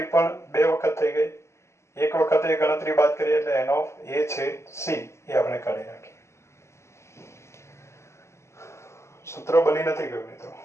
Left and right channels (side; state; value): right; late; 0.13 ms